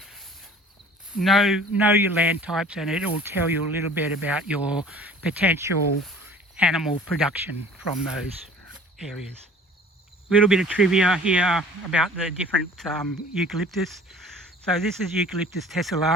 know your land types, and it will tell you a little bit about your potential animal production from those areas. A little bit of trivia here about the different eucalyptus. So this is Eucalyptus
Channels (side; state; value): both; normal; correlation 0.48